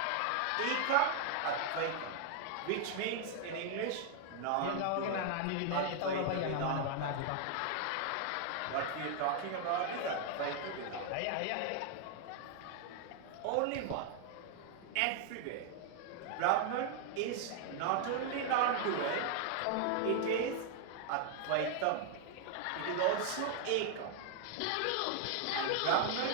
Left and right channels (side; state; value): both; different; correlation 0.00